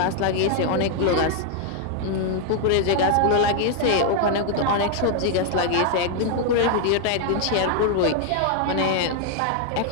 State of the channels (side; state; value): both; different; correlation 0.00